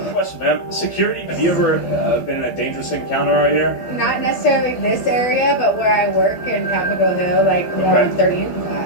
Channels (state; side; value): late; right; 12 ms